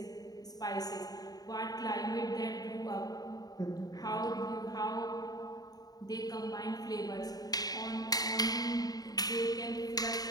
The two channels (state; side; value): late; right; 0.18 ms